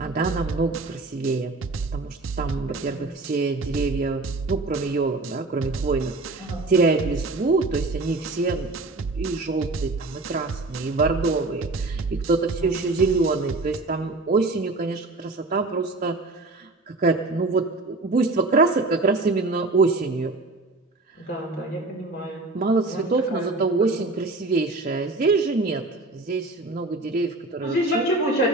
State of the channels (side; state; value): left; quieter; 3.1 dB